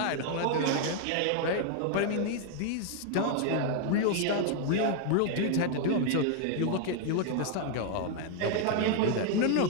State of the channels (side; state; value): both; different; correlation 0.00